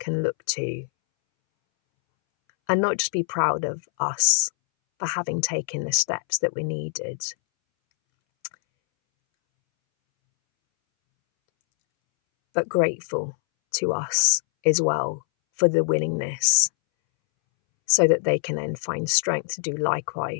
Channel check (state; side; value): silent; right; 63 dB below the other